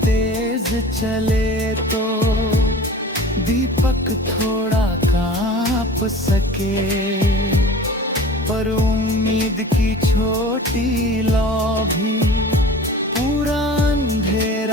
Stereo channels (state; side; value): normal; both; correlation 0.40